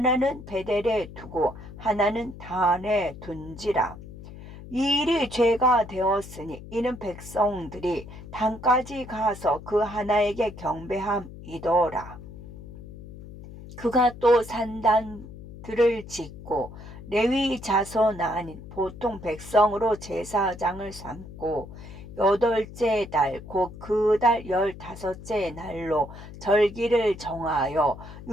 베델에 두고 하나는 단에 둔지라. 이 일이 죄가 되었으니 이는 백성들이 단까지 가서 그 하나에게 경배함이더라. 그가 또 산단들을 짓고 레위 자손 아닌 보통 백성으로 제사장을 삼고 8째 달 곧 그 달 15째 날로 절기를 정하여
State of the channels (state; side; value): noise; left; hum, 15 dB below the sound